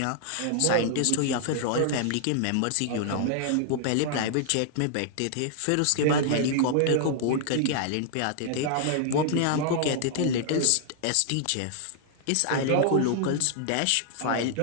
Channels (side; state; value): both; different; correlation -0.01